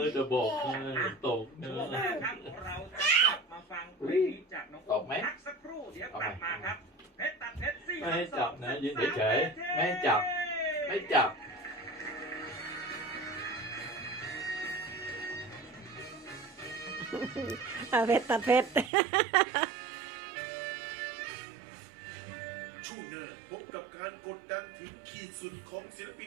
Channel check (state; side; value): drops out; left; at 18.9 s